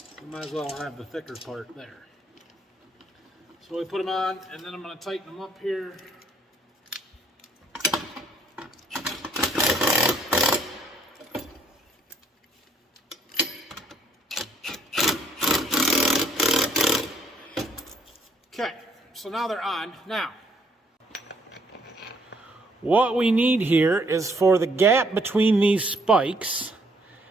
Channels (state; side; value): normal; both; correlation 0.66